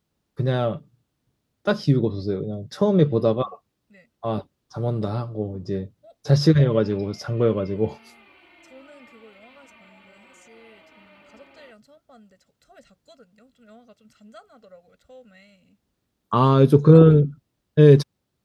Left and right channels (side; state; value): both; identical; correlation 1.00